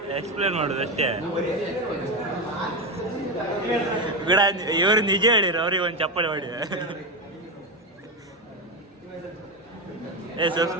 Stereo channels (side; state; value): both; normal; correlation 0.13